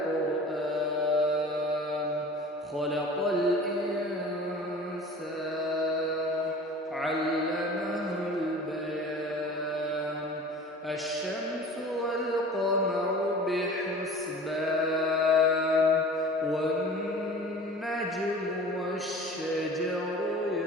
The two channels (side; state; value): both; normal; correlation 0.41